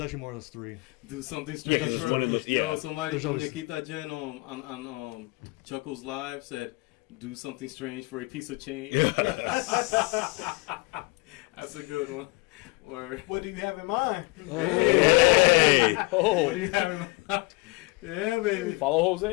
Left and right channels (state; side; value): quieter; right; 25.1 dB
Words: actually more or less three. Do something strange Yeah, for there's yo. yeah. Somebody There's from always- Nikita Jen on Chuckles Live said, "Do something strange for a piece of change." That's a good one. Or What do you have in mind? hey, Oh, what do you have in mind? Yeah, baby. Follow